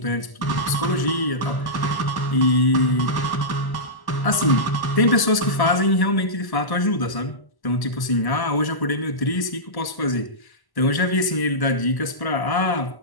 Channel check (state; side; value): late; right; 1.1 ms